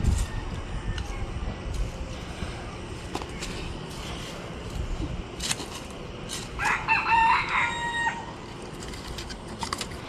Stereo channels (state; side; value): identical; both; correlation 1.00